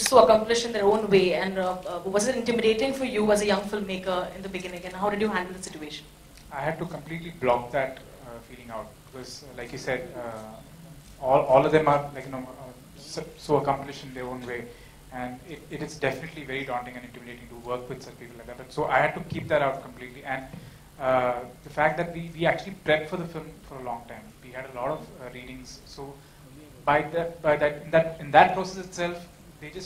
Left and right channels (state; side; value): identical; both; correlation 1.00